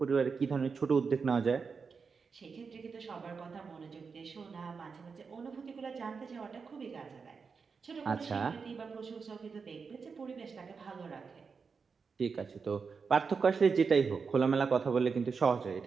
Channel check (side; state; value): left; quieter; 5.3 dB